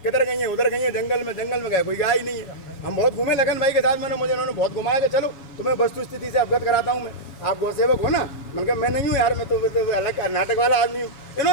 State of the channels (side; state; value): right; late; 7.2 ms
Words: किधर गई हैं? उधर गई हैं, जंगल में गए, कोई गाय ही नहीं है। हम बहुत घूमे लगन भाई के साथ, मुझे उन्होंने बहुत घुमाया कि चलो तुम्हें वस्तु स्थिति से अवगत कराता हूँ मैं, आप गौ सेवक हो ना? मैंने कहा मैं नहीं हूँ यार, मैं तो अलग नाटक वाला आदमी हूँ।